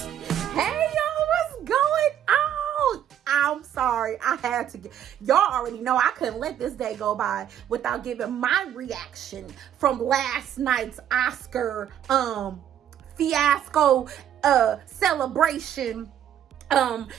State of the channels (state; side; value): quieter; left; 10.2 dB